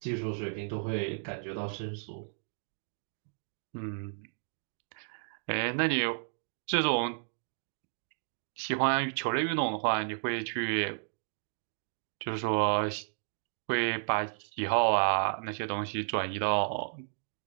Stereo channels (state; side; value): silent; left; digital silence